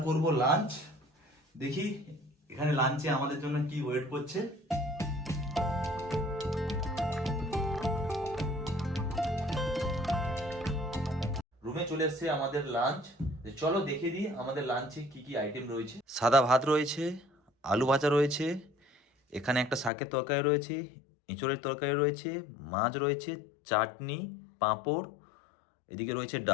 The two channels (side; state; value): right; drops out; at 19.9 s